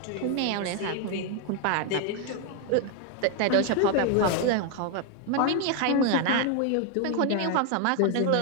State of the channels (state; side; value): different; both; correlation 0.00